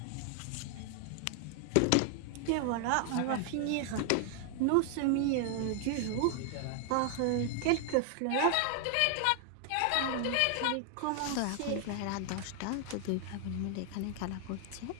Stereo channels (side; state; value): both; different; correlation 0.00